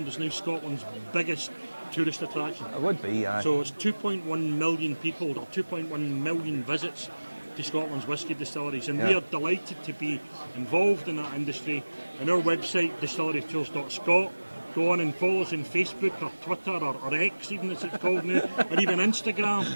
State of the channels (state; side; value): inverted; both; correlation -1.00